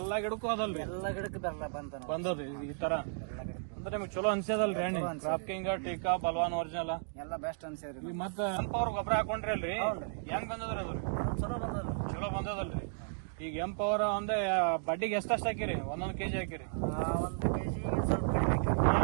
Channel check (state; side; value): silent; left; digital silence